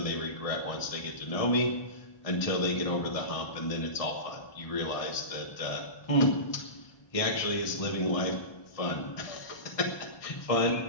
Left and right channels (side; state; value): right; late; 1.6 ms